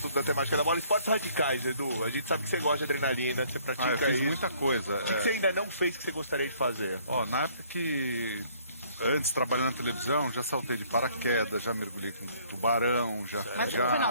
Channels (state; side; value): inverted; both; correlation -0.61